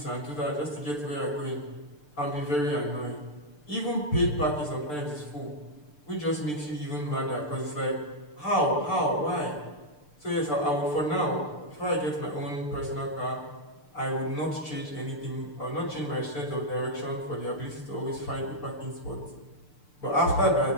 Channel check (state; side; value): late; right; 6.8 ms